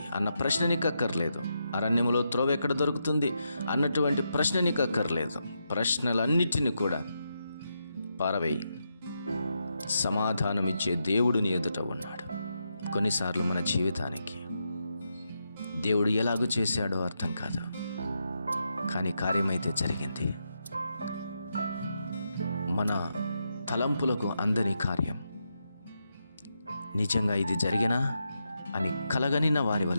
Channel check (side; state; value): both; inverted; correlation -0.84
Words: అన్న ప్రశ్న నీకు అక్కర్లేదు. అరణ్యములో త్రోవ ఎక్కడ దొరుకుతుంది అన్నటువంటి ప్రశ్న నీకు అక్కర్లేదు. ప్రశ్నలన్నిటిని కూడా పారవేయి. సమాధానమిచ్చే దేవుడు నీ ఎదుట ఉన్నాడు. కొన్నిసార్లు మన జీవితానికి దేవుడు ఎలాగూ చేశాడో అర్థం కాదు, కానీ కార్యమైతే జరిగింది. మన తలంపులకు అందని కార్యం. నిజంగా ఇది జరిగినా అని కలగనిన వారి